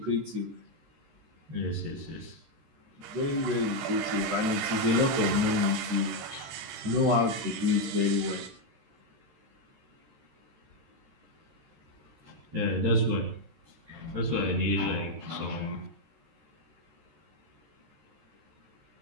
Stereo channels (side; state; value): left; late; 13 ms